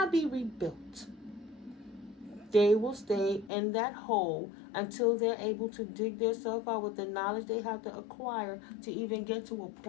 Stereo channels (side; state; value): right; drops out; at 3.5 s